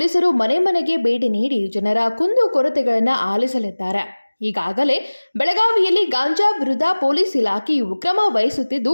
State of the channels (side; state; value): both; inverted; correlation -1.00